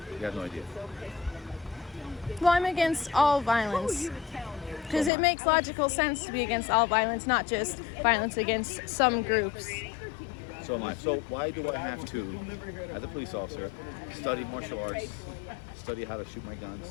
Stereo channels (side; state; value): right; drops out; at 5.1 s